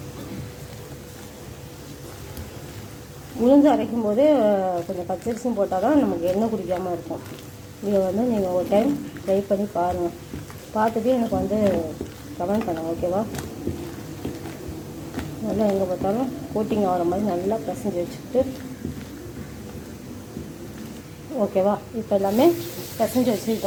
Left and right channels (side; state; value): both; identical; correlation 1.00